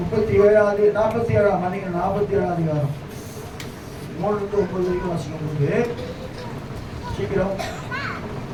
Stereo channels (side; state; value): both; identical; correlation 1.00